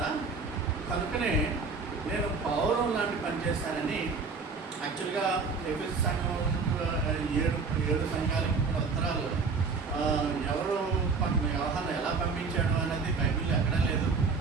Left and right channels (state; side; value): quieter; left; 4.6 dB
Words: కనుకనే నేను పౌరం లాంటి పని చేశానని యాక్చువల్గా ఎఫెసు సంఘం 7 సంఘాలకి కూడా ఉత్తరాలు ఎవరు యోహాను ఎలా పంపించాడు అనేది బైబిల్లో ఎక్కడా లేదు.